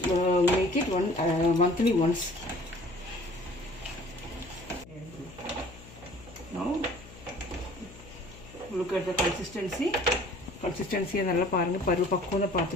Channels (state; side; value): noise; left; hum, 19 dB below the sound